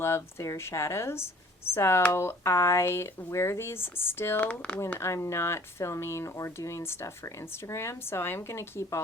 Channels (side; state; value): both; normal; correlation 0.53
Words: their shadows. So I wear these still when I'm not filming or doing stuff for Instagram. So I'm going to keep